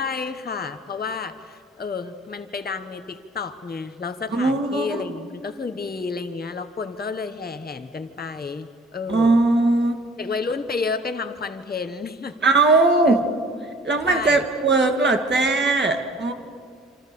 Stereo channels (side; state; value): both; normal; correlation 0.50